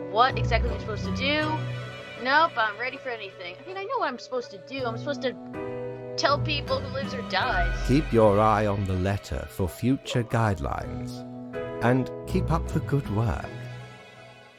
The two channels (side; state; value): both; identical; correlation 1.00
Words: what exactly I'm supposed to do. Nope, I'm ready for anything. I mean, I know what I'm supposed to do. I'm supposed to tell people who lives or dies. Keep your eye on the letter for future guidelines. And keep up the good work.